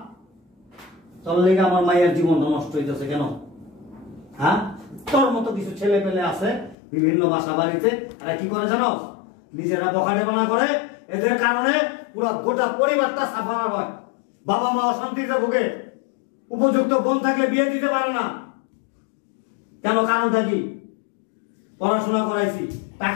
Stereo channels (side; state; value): right; drops out; at 6.8 s